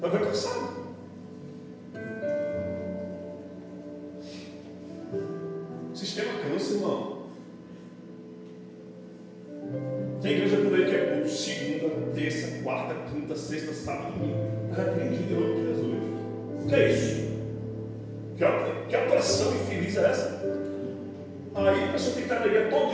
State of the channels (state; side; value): identical; both; correlation 1.00